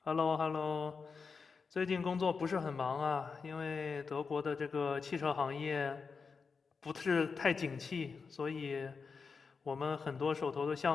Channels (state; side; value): quieter; right; 5.1 dB